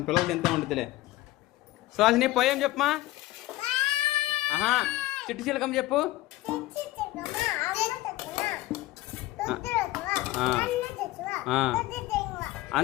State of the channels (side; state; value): right; quieter; 17.5 dB